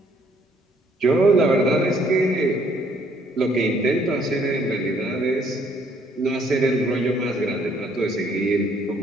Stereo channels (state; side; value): normal; both; correlation 0.65